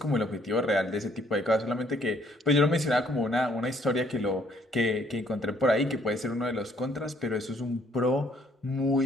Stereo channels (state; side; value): normal; both; correlation 0.65